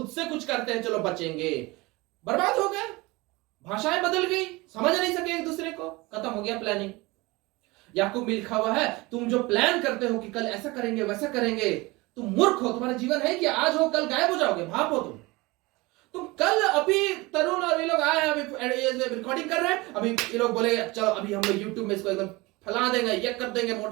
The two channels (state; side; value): quieter; left; 22.8 dB